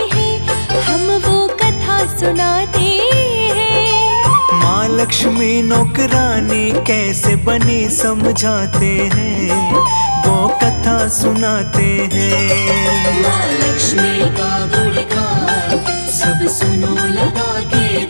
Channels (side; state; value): both; inverted; correlation -1.00